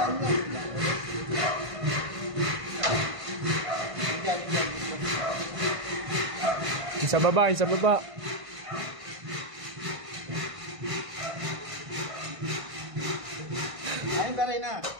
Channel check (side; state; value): left; late; 1.5 ms